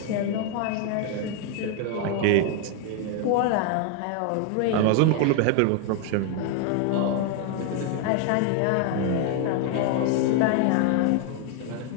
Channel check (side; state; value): both; different; correlation 0.00